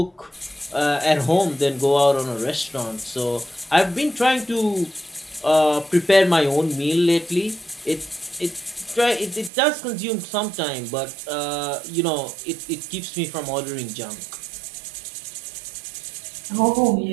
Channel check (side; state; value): left; drops out; at 9.5 s